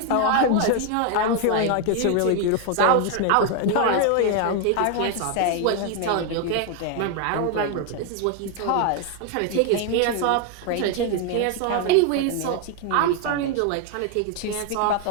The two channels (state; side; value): different; both; correlation 0.01